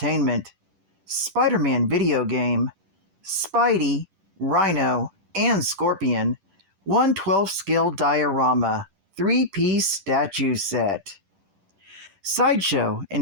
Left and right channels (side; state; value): left; late; 10 ms